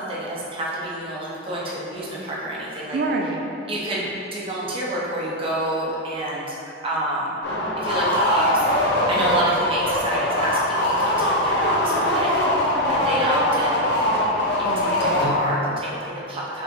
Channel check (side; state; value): both; normal; correlation 0.00